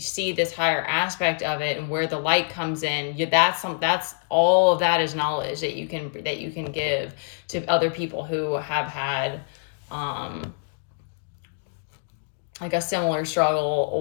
this higher aspect of it and where the light comes in, that's all of that is knowledge that you can give to other people who have had, like a similar struggle,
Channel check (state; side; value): silent; right; digital silence